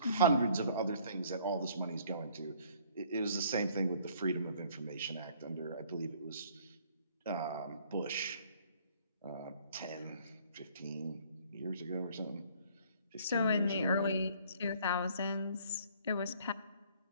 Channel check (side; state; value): both; inverted; correlation -0.58